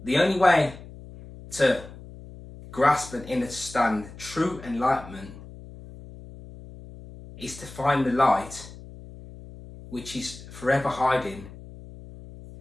the only way to grasp and understand true enlightenment is to find the light which is forever hiding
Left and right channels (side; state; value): left; noise; hum, 16 dB below the sound